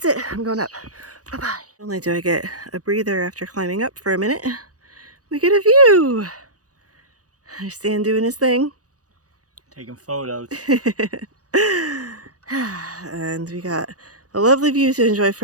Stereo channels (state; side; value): late; left; 0.67 ms